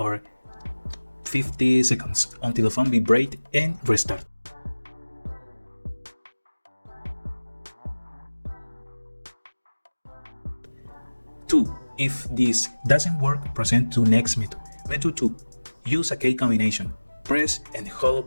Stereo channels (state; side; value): inverted; both; correlation -1.00